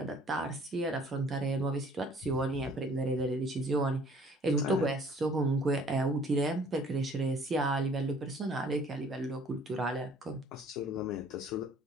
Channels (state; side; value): normal; both; correlation 0.55